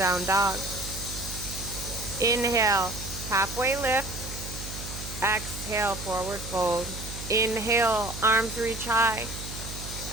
dog. Inhale, halfway lift. Exhale, forward fold. Inhale, arms reach high.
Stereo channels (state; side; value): noise; right; hum, 10 dB below the sound